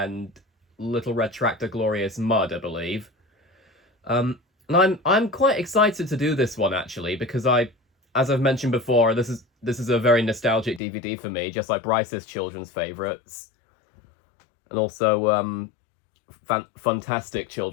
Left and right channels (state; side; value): drops out; right; at 10.8 s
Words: Little Red Tractor Glorious Mud, I believe. And I'm quite excited to do this one actually, because as I've mentioned before, this is a very nostalgic DVD for me, just like Bryce's children's favourites, and also fantastic